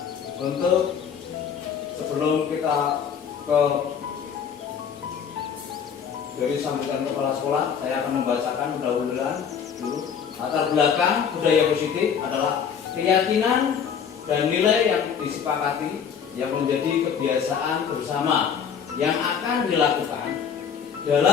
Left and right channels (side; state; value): right; quieter; 7.3 dB